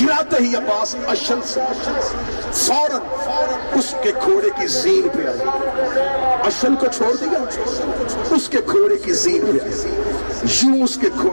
ہی عباس اشل سے فوراً اس کے گھوڑے کی زین پہ آئی، اشل کو چھوڑ دیا، اس کے گھوڑے کی زین پہ آئی، یوں اس کے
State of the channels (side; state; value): both; inverted; correlation -1.00